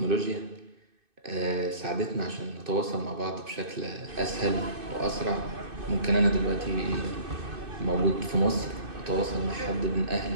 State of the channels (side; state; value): left; late; 2.6 ms